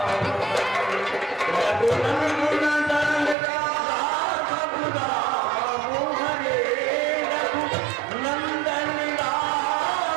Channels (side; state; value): left; drops out; at 3.4 s